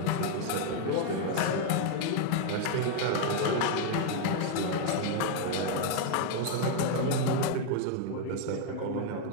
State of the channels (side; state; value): both; different; correlation 0.00